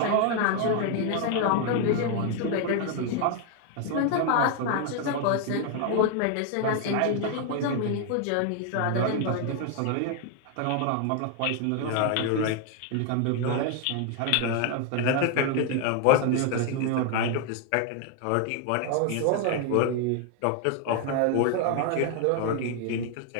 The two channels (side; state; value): both; different; correlation 0.00